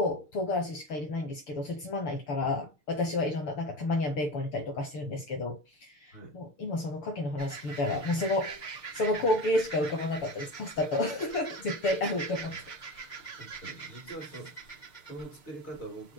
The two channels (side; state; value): right; late; 6.6 ms